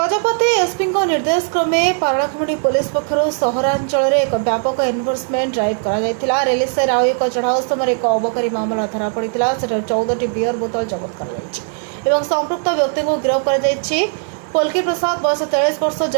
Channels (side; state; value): left; silent; 63 dB below the other